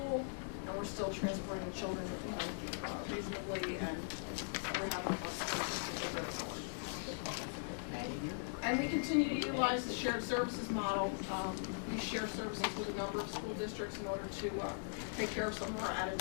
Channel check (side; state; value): right; silent; digital silence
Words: and we're still transporting the children, reasonably, and we're having buses that are just a little bit forward. Okay. And we continue to utilize the shared services model. We share services with a number of school districts in order to take care of some of our